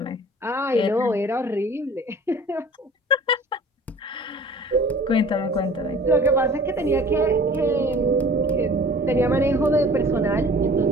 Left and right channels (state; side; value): normal; both; correlation 0.46